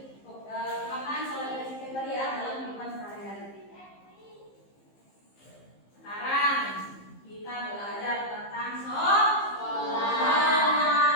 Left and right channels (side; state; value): right; late; 15 ms